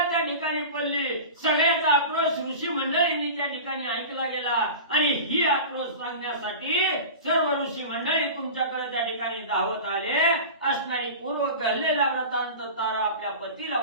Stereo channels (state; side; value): inverted; both; correlation -0.32